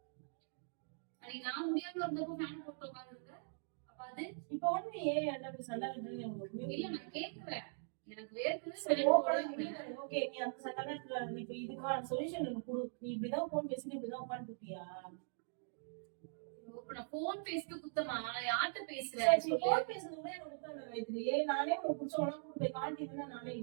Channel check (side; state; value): left; silent; digital silence